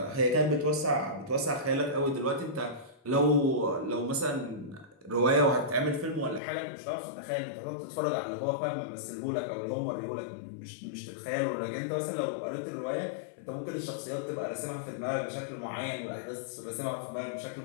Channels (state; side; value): drops out; right; at 6.4 s